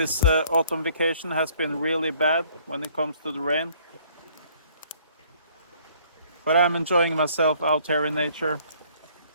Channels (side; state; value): both; inverted; correlation -0.60